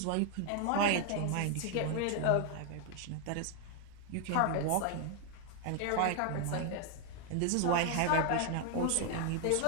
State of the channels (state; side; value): different; both; correlation 0.00